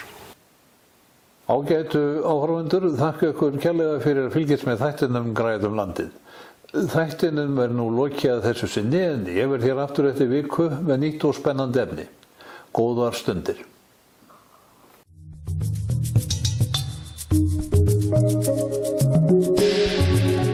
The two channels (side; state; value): both; identical; correlation 1.00